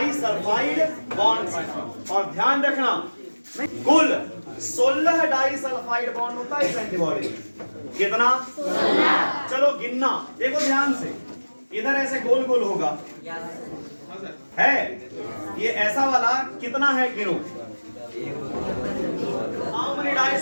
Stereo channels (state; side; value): inverted; both; correlation -1.00